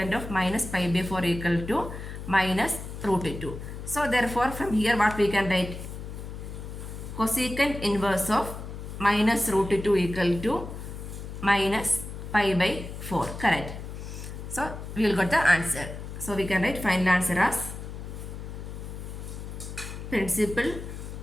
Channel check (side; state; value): left; noise; hum, 9 dB below the sound